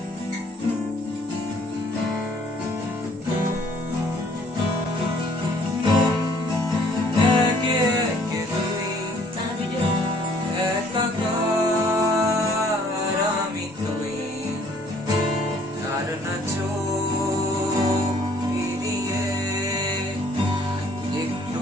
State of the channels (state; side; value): normal; both; correlation 0.59